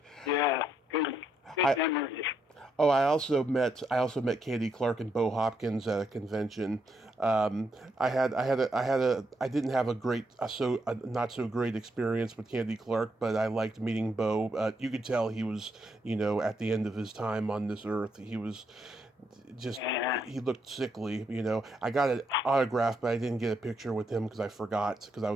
yeah, good memories. Oh, I also met Candy Clark and Bo Hopkins at a convention. I didn't have a not so great experience with Candy Clark, but I liked meeting Bo. You could tell he was, at the end of his time on this earth. He was he looked sickly. I got an autograph, but I didn't get a picture with him because I forgot, because I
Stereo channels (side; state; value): both; normal; correlation 0.77